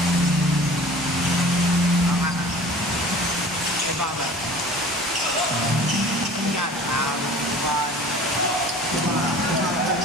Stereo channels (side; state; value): both; normal; correlation 0.44